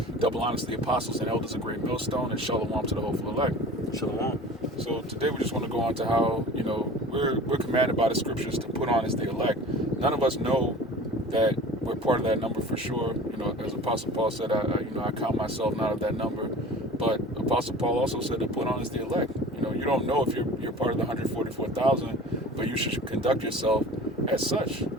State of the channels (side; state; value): both; normal; correlation 0.41